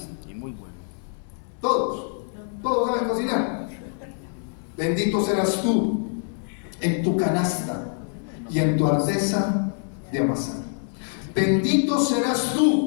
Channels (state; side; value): silent; right; 57 dB below the other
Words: Y muy bueno. Todos saben cocinar. Bendito serás tú en tu canasta y en tu artesa de amasar. Bendito serás